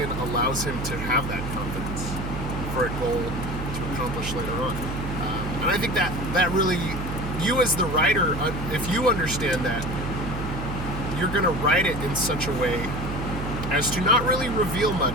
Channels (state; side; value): noise; right; hum, 6 dB below the sound